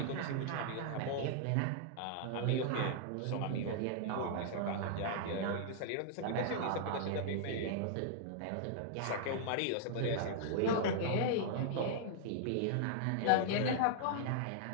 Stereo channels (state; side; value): different; both; correlation -0.01